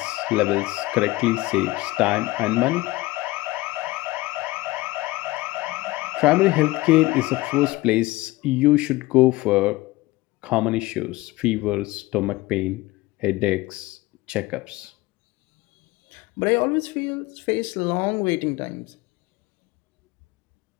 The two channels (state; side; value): quieter; right; 19.8 dB